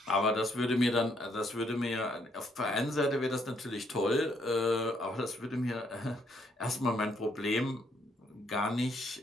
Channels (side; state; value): both; normal; correlation 0.71